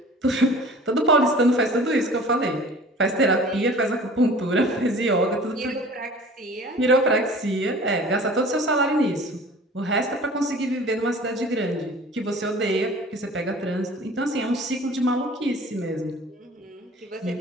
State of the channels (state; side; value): normal; both; correlation 0.45